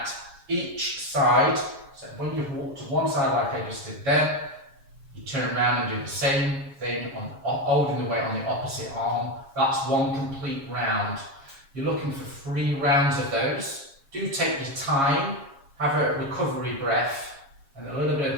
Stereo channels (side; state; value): left; late; 7.3 ms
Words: each side. So when you've walked to one side like I just did there, you turn around and do the same thing, holding the weight on the opposite arm. That's one complete round. You're looking for 3 rounds of those. Do take your time, have a recovery breath, and a little bit